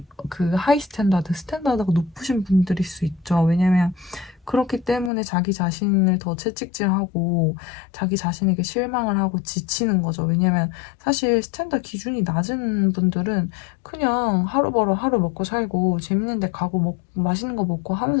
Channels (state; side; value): drops out; right; at 5.1 s